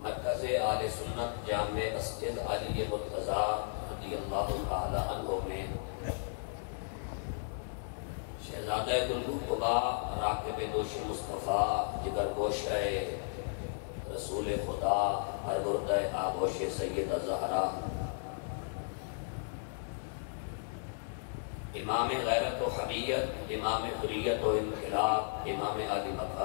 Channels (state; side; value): silent; right; digital silence